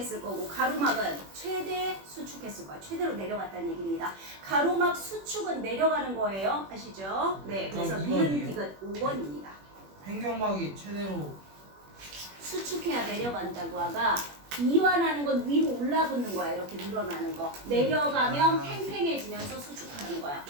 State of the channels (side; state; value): left; late; 21 ms